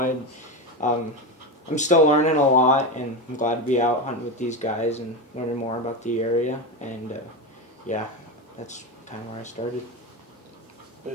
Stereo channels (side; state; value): both; normal; correlation 0.17